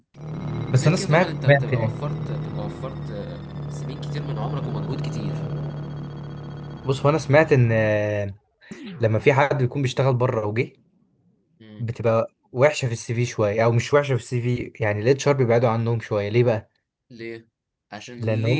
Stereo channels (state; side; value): identical; both; correlation 1.00